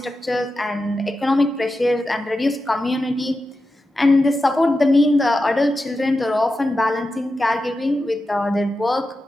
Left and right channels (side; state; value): both; normal; correlation 0.91